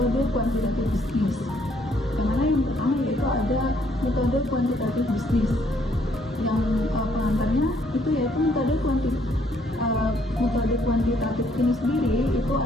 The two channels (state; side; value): normal; both; correlation 0.67